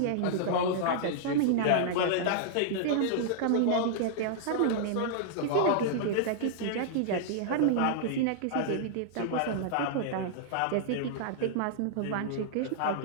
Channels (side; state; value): both; different; correlation -0.01